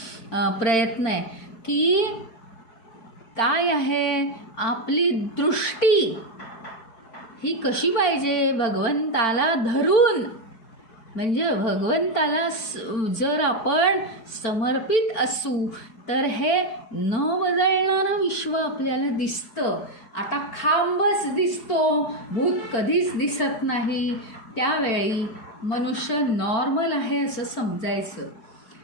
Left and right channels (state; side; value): late; right; 4.5 ms